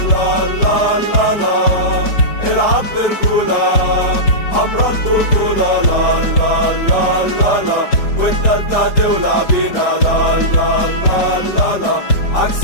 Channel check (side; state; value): right; late; 5.0 ms